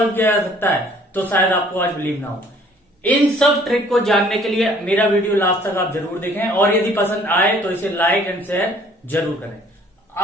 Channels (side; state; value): both; normal; correlation 0.57